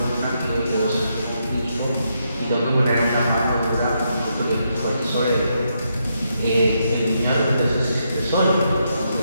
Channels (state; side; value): inverted; both; correlation -0.80